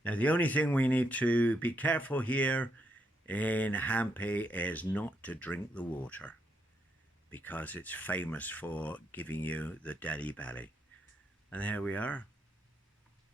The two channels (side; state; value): both; normal; correlation 0.78